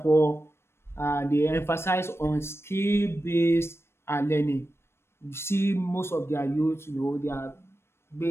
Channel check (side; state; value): right; late; 0.12 ms